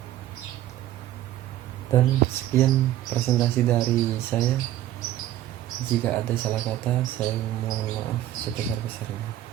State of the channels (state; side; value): quieter; left; 13.3 dB